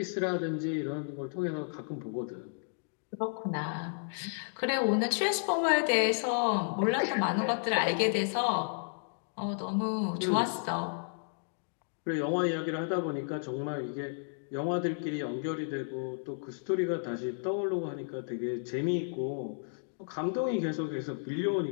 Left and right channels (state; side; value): silent; right; digital silence